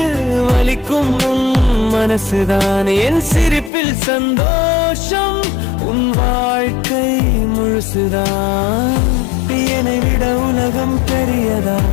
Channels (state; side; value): drops out; right; at 3.7 s